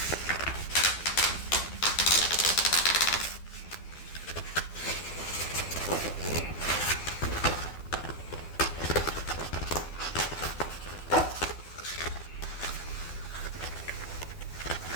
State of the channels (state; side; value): late; right; 12 ms